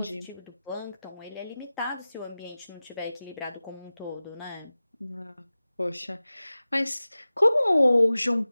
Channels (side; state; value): both; inverted; correlation -0.96